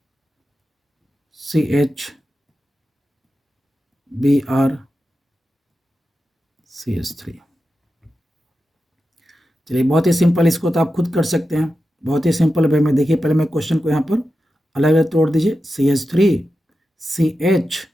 CH Br CH3। चलिए बहुत ही सिंपल, इसको तो आप खुद कर सकते हैं, बहुत ही सिंपल वे में। देखिए पहले मैं क्वेश्चन को यहाँ पर अलग अलग तोड़ दीजिए, CH3 CH,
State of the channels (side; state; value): both; normal; correlation 0.91